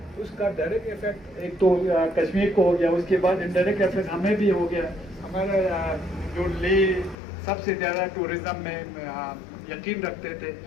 उसका डायरेक्ट इफेक्ट एक तो कश्मीर को हो गया, उसके बाद इनडायरेक्ट इफेक्ट हमें भी हो गया। हमारा जो ले सबसे ज़्यादा टूरिज्म में यकीन रखते थे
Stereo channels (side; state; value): right; drops out; at 7.2 s